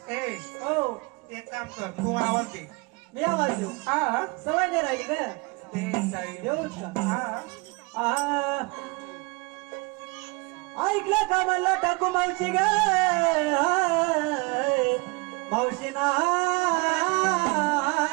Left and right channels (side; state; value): left; quieter; 27.6 dB